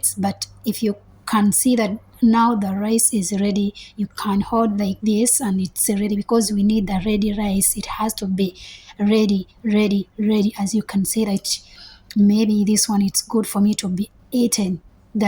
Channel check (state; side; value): identical; both; correlation 1.00